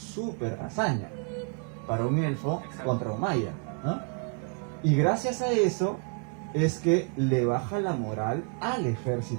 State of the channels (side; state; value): left; quieter; 38.0 dB